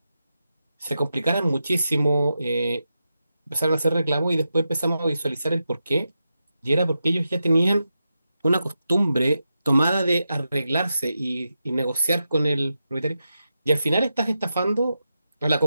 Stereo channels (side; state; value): both; inverted; correlation -0.89